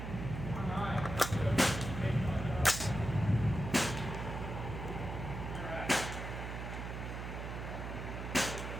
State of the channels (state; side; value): noise; right; hum, 6 dB below the sound